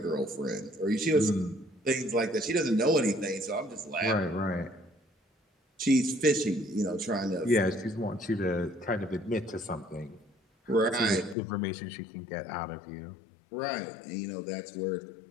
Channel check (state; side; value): drops out; right; at 11.4 s